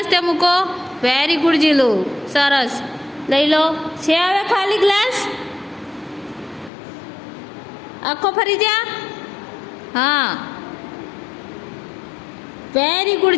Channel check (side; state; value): right; drops out; at 6.7 s